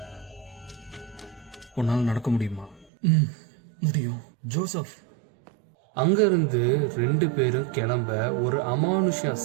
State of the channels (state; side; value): drops out; left; at 2.9 s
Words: உன்னால் நடக்க முடியுமா? முடியும் ஜோசப். அங்கிருந்து 2 பேரும் கிளம்ப ஒரு அமானுஷ